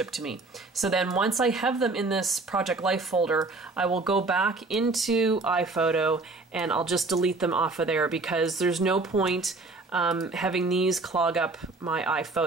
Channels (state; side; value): quieter; left; 3.4 dB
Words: to me. So then once I have them in this Project Life folder, I will go back into iPhoto and I'll just delete them off of there, because there's no point having these clog up my